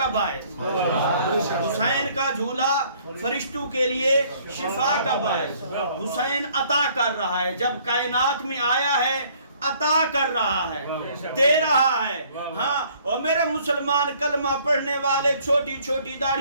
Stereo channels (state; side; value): inverted; both; correlation -0.60